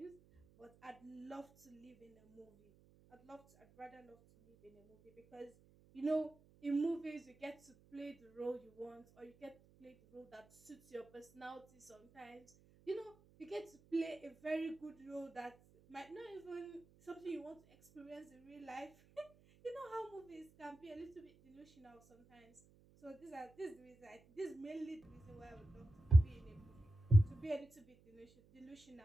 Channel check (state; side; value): noise; right; hum, 27 dB below the sound